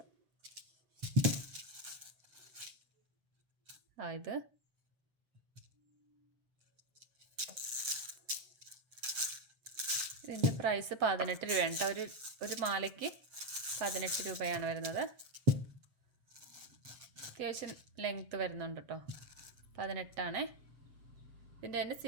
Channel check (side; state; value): left; late; 7.5 ms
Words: ഇത് ഇതിൻ്റെ പ്രൈസ് 18 രൂപയാണ് കേട്ടോ. ഒരു മാലയ്ക്ക് 18 രൂപയാണ് വരുന്നത്. അത്യാവശ്യം ലെങ്ത്ത് വരുന്നുണ്ട് കേട്ടോ. 18 ആണ്. ഇതിൻ്റെ തന്നെ